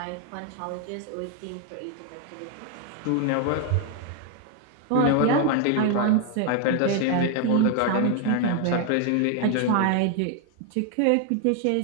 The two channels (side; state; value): both; different; correlation 0.01